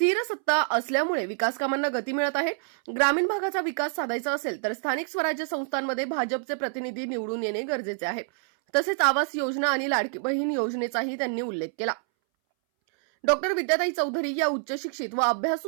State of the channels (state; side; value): silent; left; 60 dB below the other